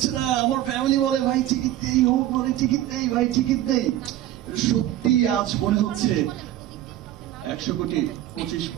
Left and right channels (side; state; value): left; quieter; 13.5 dB